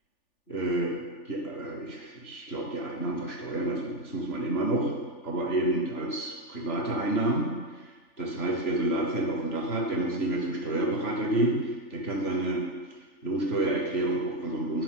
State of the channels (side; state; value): right; late; 3.4 ms